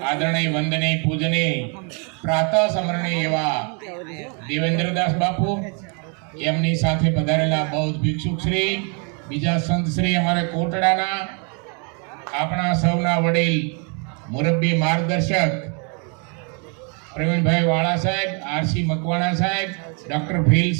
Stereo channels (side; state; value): left; quieter; 37.0 dB